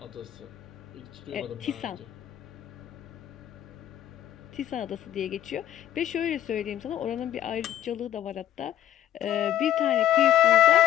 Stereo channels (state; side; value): quieter; right; 11.8 dB